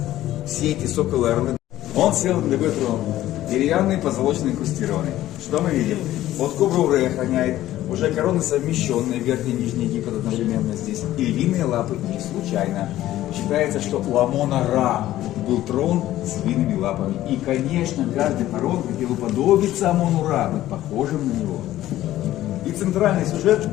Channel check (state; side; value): quieter; right; 14.2 dB